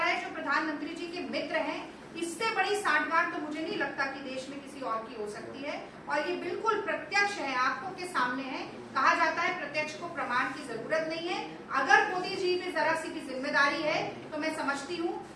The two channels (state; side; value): identical; both; correlation 1.00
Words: है जो प्रधानमंत्री जी के मित्र हैं। इससे बड़ी सांठगांठ तो मुझे नहीं लगता कि देश में किसी और की हो सकती है। और ये बिल्कुल प्रत्यक्ष है, आंखों के सामने है। कहा जाता है प्रत्यक्ष को प्रमाण की जरूरत नहीं है। अगर मोदी जी में जरा सी भी जिम्मेदारी है तो मैं समझती हूँ